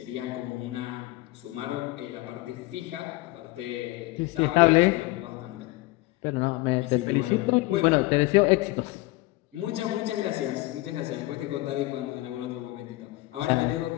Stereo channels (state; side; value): quieter; right; 20.0 dB